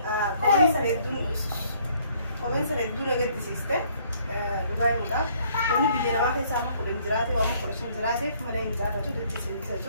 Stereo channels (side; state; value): both; inverted; correlation -0.63